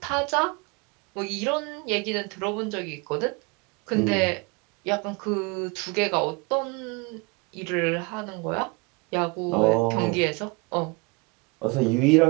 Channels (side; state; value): left; quieter; 27.8 dB